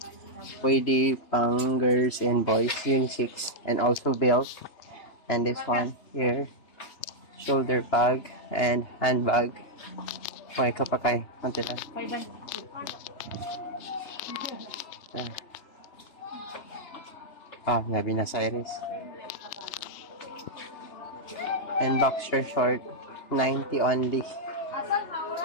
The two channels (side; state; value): right; late; 3.3 ms